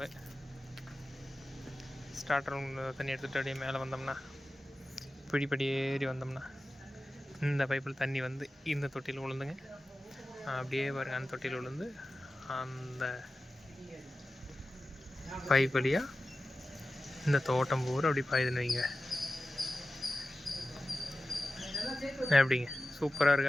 ஸ்டார்டர் ரூம் தண்ணி எடுத்துகிட்டு அப்படியே மேலே வந்தோம்னா படி ஏறி வந்தோம்னா இந்த பைப்பில் தண்ணி வந்து இந்த தொட்டியில் விழுந்துங்க. அப்படியே பாருங்கள், அந்த தொட்டியில் விழுந்து அந்த பைப் வழியாக இந்த தோட்டம் பூரா அப்படி பாயுதுன்னு வைங்க. எப்படிங்க, சூப்பராக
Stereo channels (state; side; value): normal; both; correlation 0.94